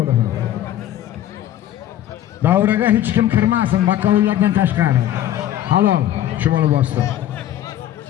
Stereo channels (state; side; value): quieter; right; 12.2 dB